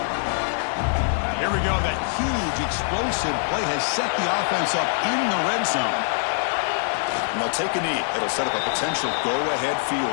Here we go. That huge explosive play has set the offense up in the red zone. And they'll take a knee. It'll set up a potential go-ahead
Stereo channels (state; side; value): silent; right; digital silence